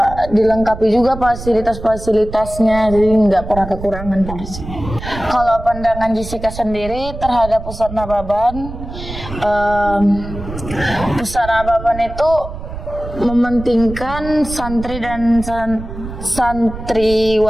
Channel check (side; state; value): right; noise; rumble, 10 dB below the sound